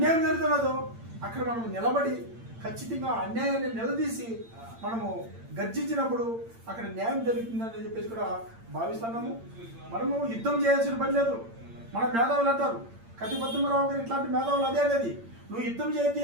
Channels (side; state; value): left; late; 8.8 ms